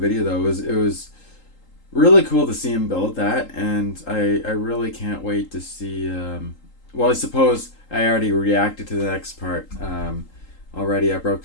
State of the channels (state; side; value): late; right; 3.8 ms